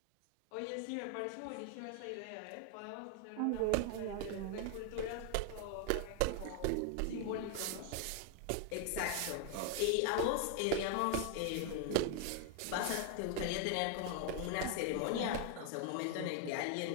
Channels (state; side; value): different; both; correlation 0.00